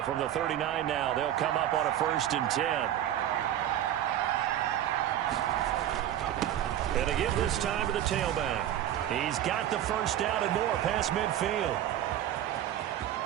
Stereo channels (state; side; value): quieter; left; 11.7 dB